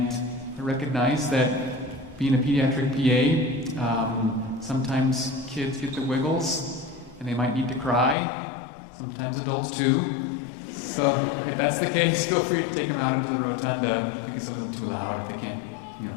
recognize that being a pediatric PA, sometimes kids get the wiggles and they might need to cry, sometimes adults too. So if that's the case, feel free to take them out into the rotunda if it gets a little too loud, if they can't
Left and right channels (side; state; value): right; drops out; at 8.2 s